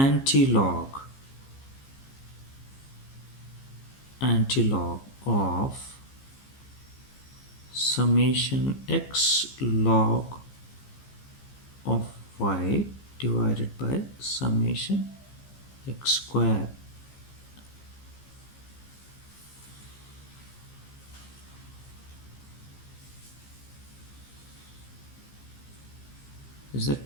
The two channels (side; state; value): right; late; 15 ms